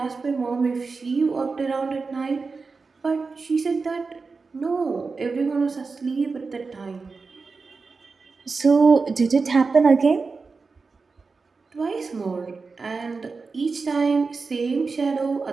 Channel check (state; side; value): quieter; left; 4.4 dB